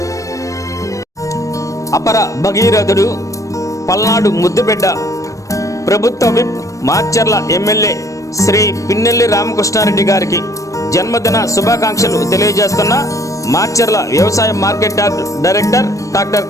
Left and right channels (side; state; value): right; late; 0.16 ms